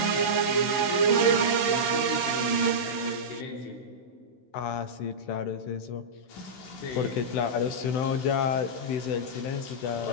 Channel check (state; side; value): late; right; 16 ms